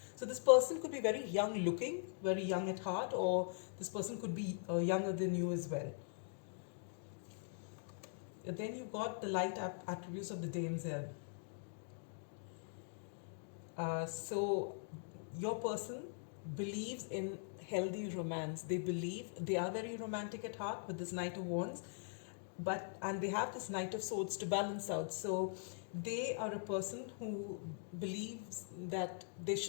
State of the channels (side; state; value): right; silent; digital silence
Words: So this person could be very young looking, very young at heart, or this person could be younger than you as well. And then you've got the light attributes of the damsel. So your person believes in healthy romance. They believe they are very romantic at heart with this Knight of Wands. and they have this Knight of Swords to balance out. So they are a person who believes that there